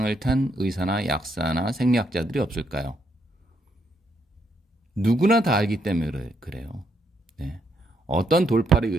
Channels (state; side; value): normal; both; correlation 0.76